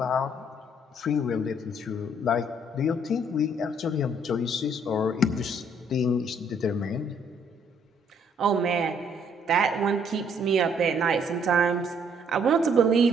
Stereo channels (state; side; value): normal; both; correlation 0.65